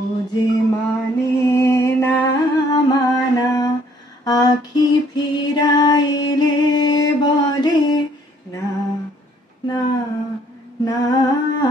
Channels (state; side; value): normal; both; correlation 0.62